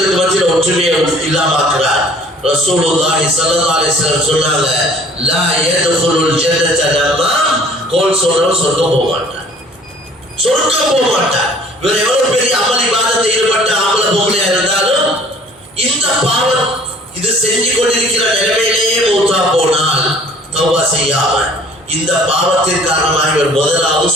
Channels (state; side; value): normal; both; correlation 0.53